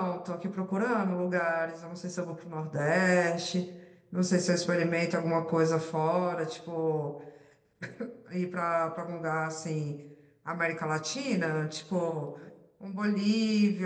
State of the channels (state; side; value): identical; both; correlation 1.00